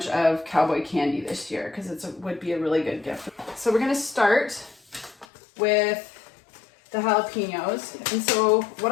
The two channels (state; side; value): drops out; right; at 5.2 s